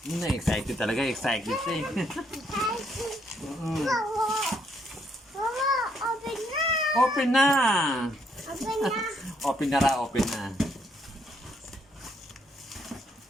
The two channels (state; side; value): normal; both; correlation 0.72